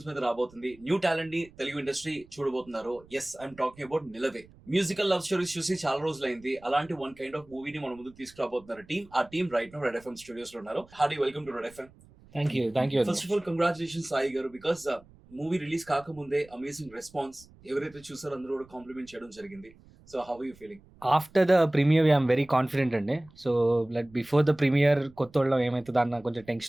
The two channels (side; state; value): right; noise; rumble, 25 dB below the sound